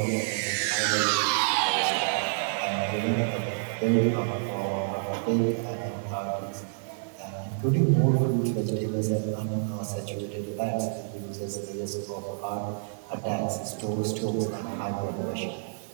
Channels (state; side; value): silent; left; digital silence